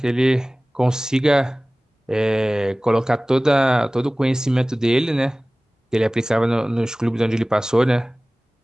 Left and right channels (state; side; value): normal; both; correlation 0.98